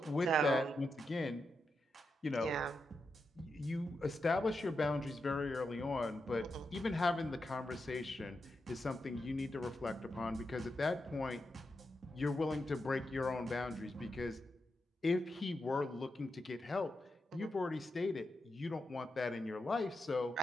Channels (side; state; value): both; normal; correlation 0.87